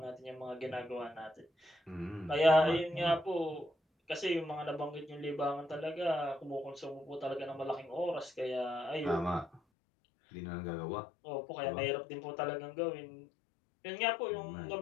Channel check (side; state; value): right; drops out; at 9.6 s